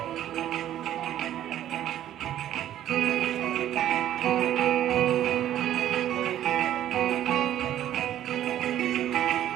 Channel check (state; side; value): quieter; left; 11.9 dB